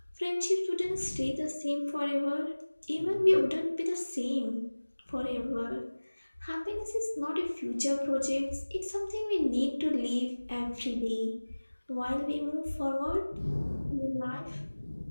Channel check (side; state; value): both; inverted; correlation -1.00